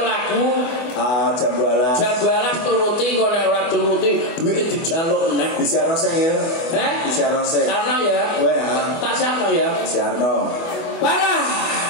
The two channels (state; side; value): late; right; 24 ms